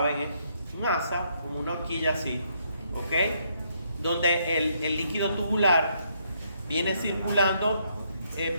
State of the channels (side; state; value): both; inverted; correlation -0.73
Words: es un asa, como una horquilla así, ¿ok? Donde el líquido tubular viene circulando,